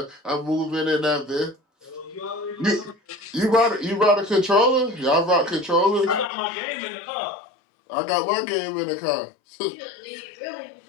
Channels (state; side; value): drops out; right; at 6.3 s